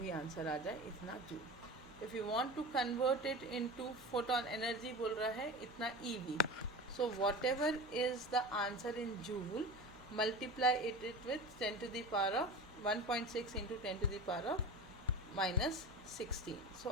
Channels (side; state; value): both; normal; correlation 0.30